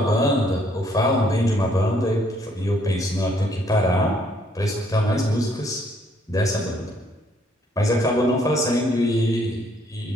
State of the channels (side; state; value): both; normal; correlation 0.67